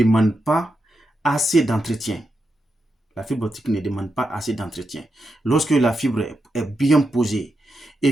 pas assez d'entretien. La fibre optique ne demande pas assez d'entretien. Lorsque la fibre est bien posée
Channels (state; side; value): normal; both; correlation 0.86